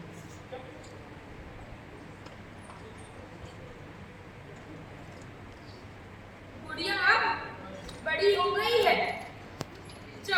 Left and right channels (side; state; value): both; identical; correlation 1.00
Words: गुड़िया अब बड़ी हो गई है,